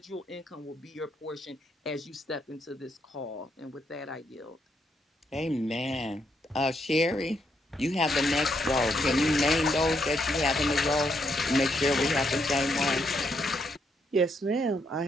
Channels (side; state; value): both; normal; correlation 0.77